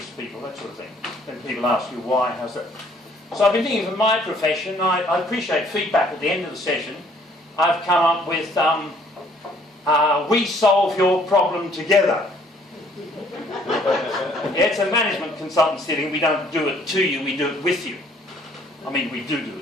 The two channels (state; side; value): normal; both; correlation 0.61